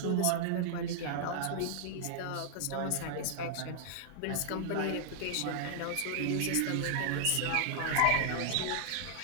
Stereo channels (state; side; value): different; both; correlation -0.01